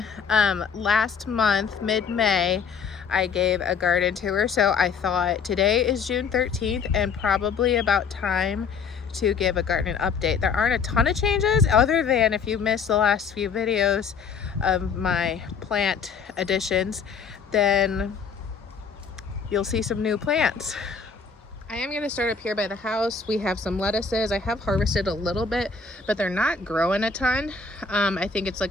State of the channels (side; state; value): right; quieter; 5.6 dB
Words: Last month, mid-May, I gave a garden tour, so I thought today is June 13th and probably about time to give a garden update. There aren't a ton of changes other than if you missed the last few videos of my plant additions, then you'll see some new plants. I am going to start up here by the house. We have some lettuces. I have harvested a little bit, but they're not growing a ton. I think it's like